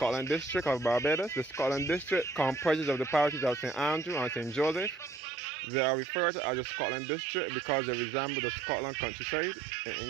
district of Barbados. The Scotland district comprises of the parishes of St. Andrew and St. Joseph. They are referred to as the Scotland district because they resemble the Scotland countryside in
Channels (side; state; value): left; drops out; at 5.2 s